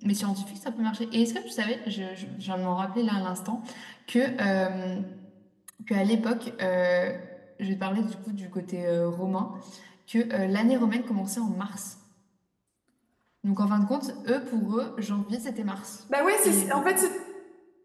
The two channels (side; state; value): both; identical; correlation 1.00